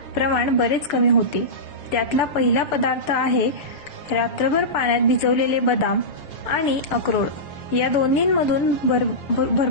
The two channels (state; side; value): late; right; 6.8 ms